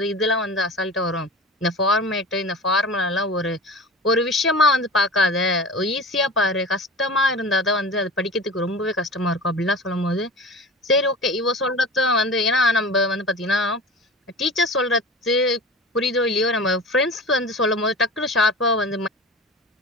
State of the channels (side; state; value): both; normal; correlation 0.35